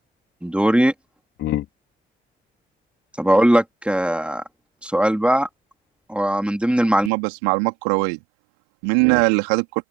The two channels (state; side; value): drops out; left; at 7.1 s